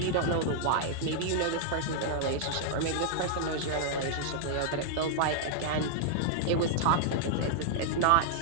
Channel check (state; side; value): different; both; correlation -0.01